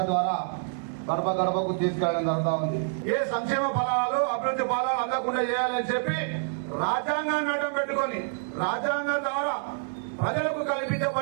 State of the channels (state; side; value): silent; left; digital silence